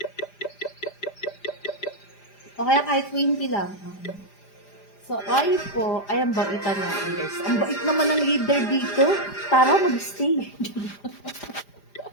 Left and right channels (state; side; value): late; right; 5.0 ms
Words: O kaya kahit 20 lang. So, ay po, ay ang baitan natin guys. Ang bait naman ng leader dito. Tara, mag-stay.